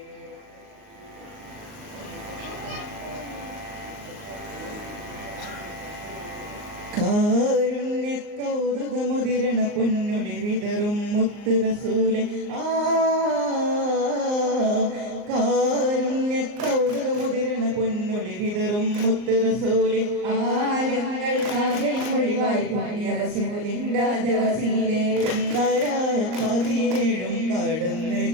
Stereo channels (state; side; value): late; left; 38 ms